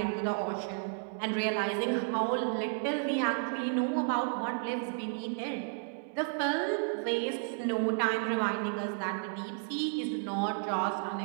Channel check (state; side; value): silent; left; 56 dB below the other